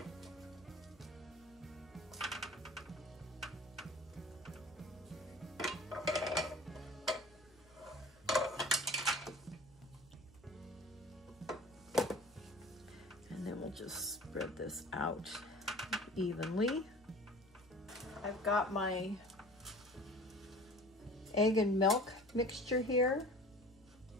And then we'll just spread this out evenly. I've got my egg and milk mixture here,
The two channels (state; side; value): noise; left; hum, 27 dB below the sound